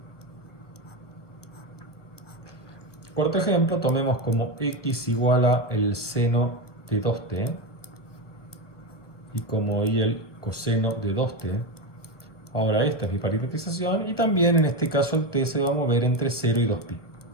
Cuarto ejemplo, tomemos como X igual a el seno de 2t y como Y el coseno de 2t. Ahora esta es mi parametrización y también en este caso el t se va a mover entre 0 y 2pi.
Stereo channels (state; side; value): late; right; 1.0 ms